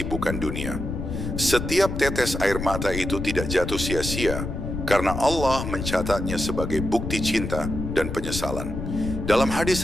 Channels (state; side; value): noise; left; rumble, 5 dB below the sound